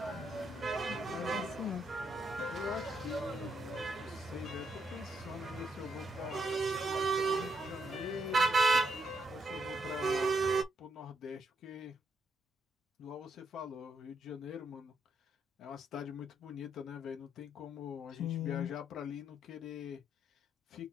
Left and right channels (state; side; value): normal; both; correlation 0.77